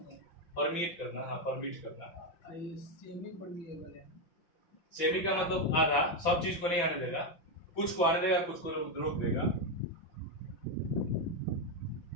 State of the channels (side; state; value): right; late; 5.9 ms